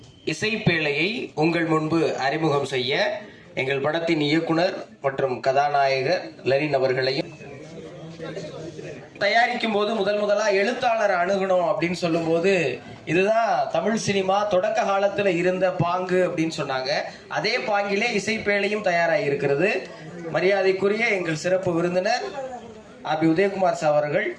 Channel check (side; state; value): both; identical; correlation 1.00